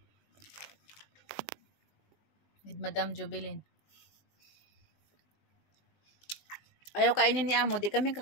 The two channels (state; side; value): late; right; 20 ms